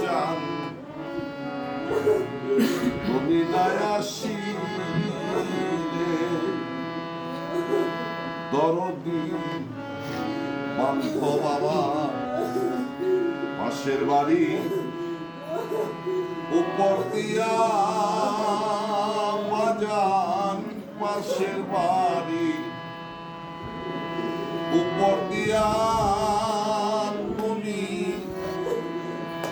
তুমি নাই আসিলে দরদি বান্ধ বাবা পাশের বাড়ি উপর দিয়া বাজান পাশের বাড়ি উপর দিয়া তুমি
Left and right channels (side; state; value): both; identical; correlation 1.00